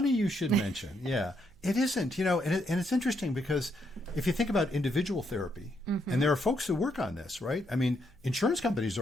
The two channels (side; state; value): right; noise; hum, 26 dB below the sound